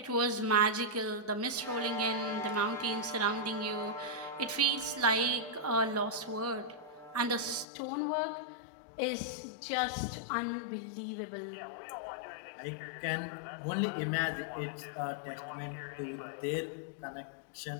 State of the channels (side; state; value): right; drops out; at 7.7 s